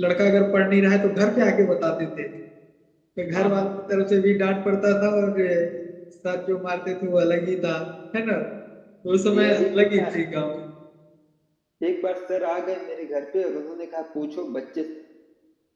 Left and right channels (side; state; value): both; identical; correlation 1.00